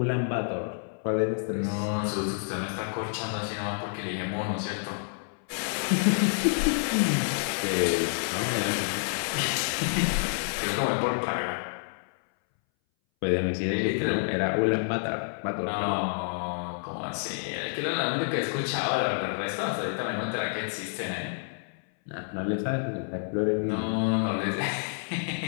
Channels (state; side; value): silent; right; 59 dB below the other